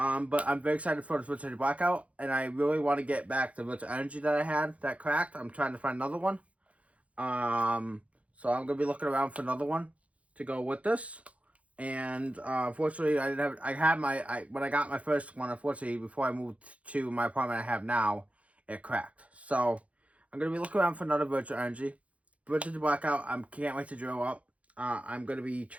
I'm very excited for the Virtual Blackout, and I really want to get back the Virtual Energy that I had that cracked. I'm trying to find another one. So I'm going to be looking around for another one to go with this. And unfortunately, I didn't have, when I got my first one, unfortunately, before I moved to my apartment I have now, it cracked. So I'm going to be looking around for another Virtual Energy. Virtual Blackout, I can't wait to drill up. I'm going to be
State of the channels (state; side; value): late; left; 0.065 ms